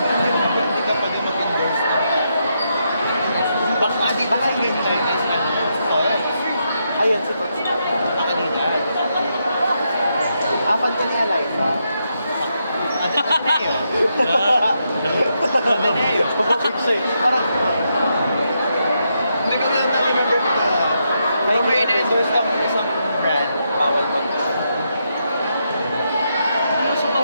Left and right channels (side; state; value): both; inverted; correlation -0.81